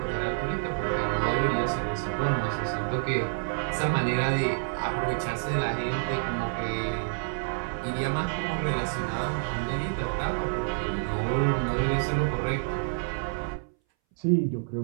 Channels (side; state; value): left; silent; 59 dB below the other